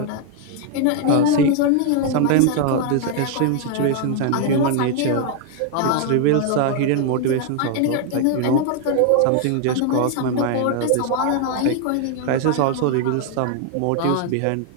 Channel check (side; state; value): both; different; correlation 0.00